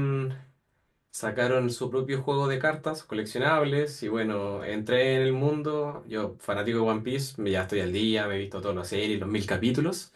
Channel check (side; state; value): both; identical; correlation 1.00